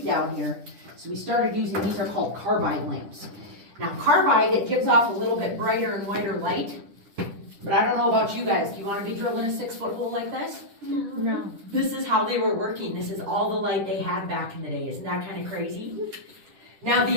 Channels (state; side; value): late; left; 10 ms